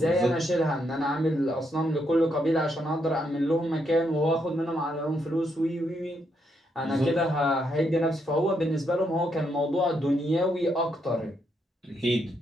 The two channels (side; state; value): both; normal; correlation 0.78